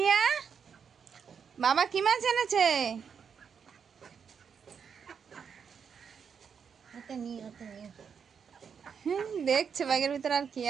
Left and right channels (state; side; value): quieter; left; 6.8 dB